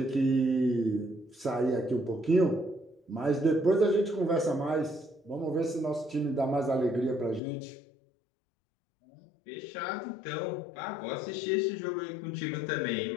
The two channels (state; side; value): drops out; right; at 7.4 s